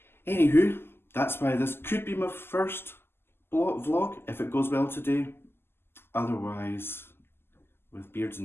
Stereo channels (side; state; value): right; late; 0.11 ms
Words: Anywho, that's why this could be my first vlog, if it goes well today. Otherwise, with Beards